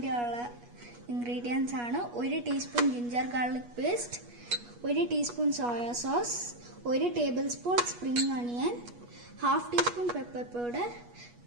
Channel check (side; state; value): left; late; 8.3 ms